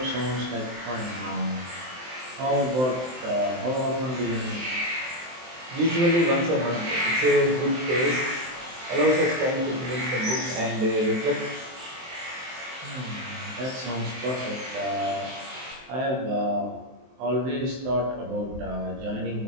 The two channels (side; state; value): left; late; 23 ms